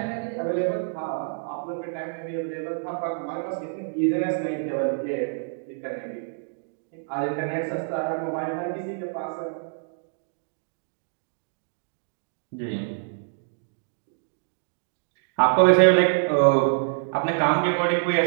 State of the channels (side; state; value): left; silent; digital silence